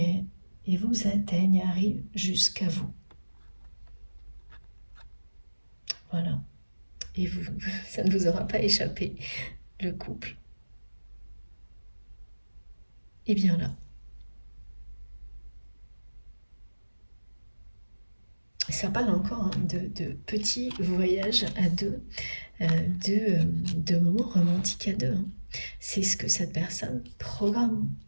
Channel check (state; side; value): inverted; both; correlation -1.00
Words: vous atteignent, arrivent jusqu'à vous. Voilà. Et vous, ça ne vous aura pas échappé, le couple est bien là. Ça parle encore de petits voyages à deux, de moments romantiques à deux. C'est ce que cette personne programme